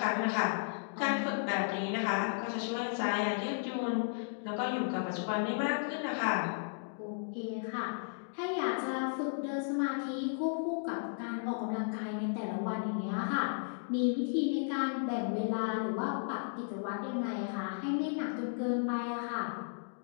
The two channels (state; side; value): silent; right; digital silence